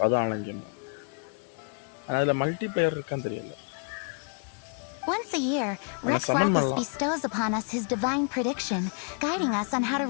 அது ஆன்லைன் கேம். அதுல மல்டிப்ளேயர் இருக்கான்னு தெரியல. Once a year, Rex Lapis bestows upon us his divine prediction, guiding us on how to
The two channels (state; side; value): quieter; right; 39.8 dB